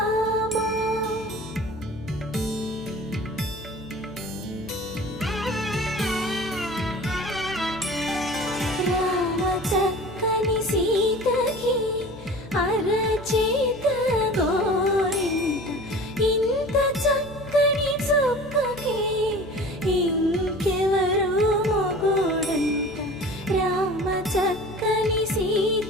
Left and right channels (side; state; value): left; noise; hum, 17 dB below the sound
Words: రామ చక్కని సీతకి అరచేత గోరింట ఇంత చక్కని చుక్కకి ఇంకెవరు మొగుడంట రామ చక్కని